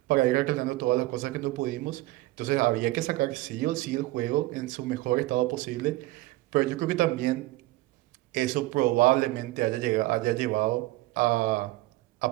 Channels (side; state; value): left; quieter; 19.2 dB